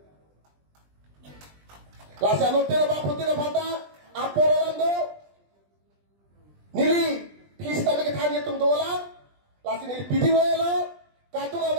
Lasa nu tira ba putira phata, aporolando, nili pista me ke thani tum dola, lasi nili pidi lo, katu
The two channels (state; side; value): late; left; 20 ms